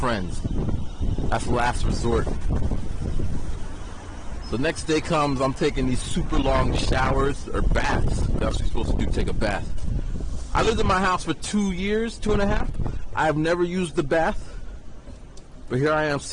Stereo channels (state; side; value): identical; both; correlation 1.00